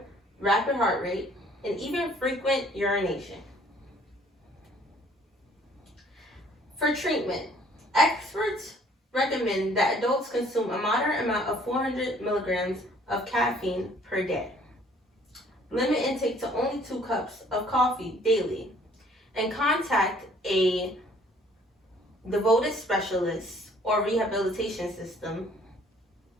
rapid heart rate, and even frequent urination. For treatment, experts recommend that adults consume a moderate amount of 400 milligrams of caffeine per day. Limit intake to only 2 cups of coffee daily, and contact a devoted specialist or rehabilitation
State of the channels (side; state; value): both; normal; correlation 0.58